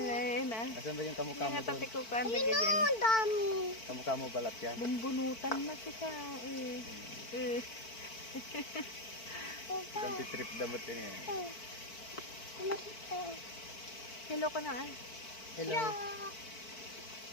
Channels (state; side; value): late; right; 4.5 ms